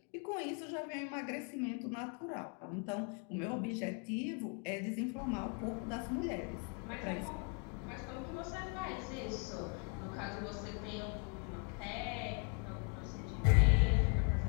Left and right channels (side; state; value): right; quieter; 36.2 dB